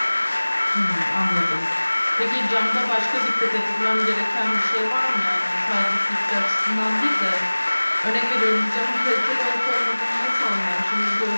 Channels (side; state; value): both; inverted; correlation -1.00